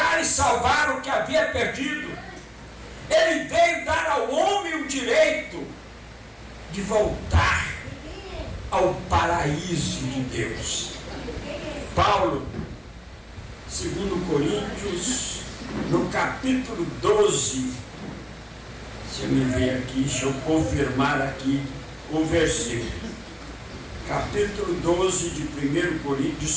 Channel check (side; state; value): both; identical; correlation 1.00